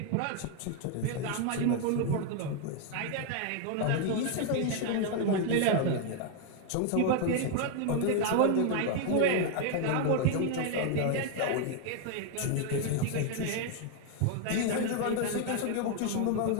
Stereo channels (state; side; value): different; both; correlation 0.00